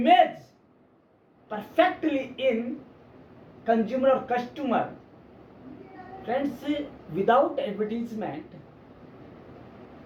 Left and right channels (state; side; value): identical; both; correlation 1.00